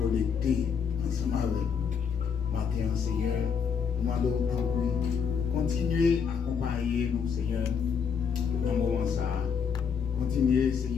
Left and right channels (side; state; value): right; quieter; 6.6 dB